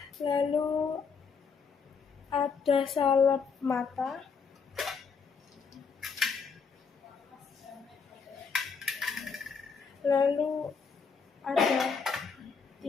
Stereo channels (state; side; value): quieter; right; 5.5 dB